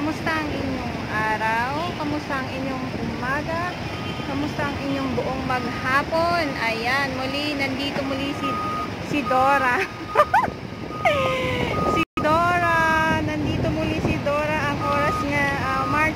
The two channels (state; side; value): identical; both; correlation 1.00